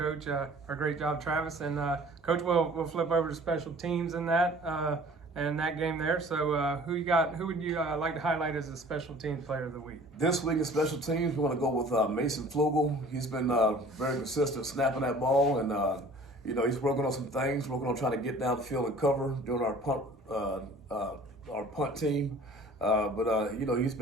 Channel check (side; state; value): both; normal; correlation 0.48